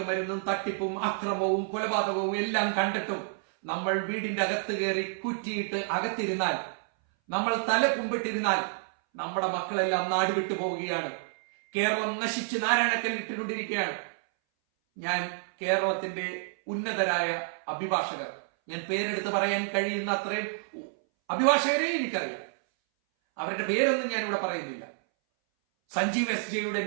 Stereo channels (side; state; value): left; silent; 58 dB below the other